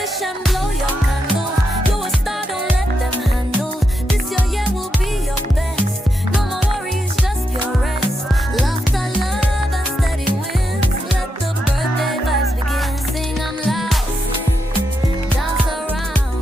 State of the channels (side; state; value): both; normal; correlation 0.84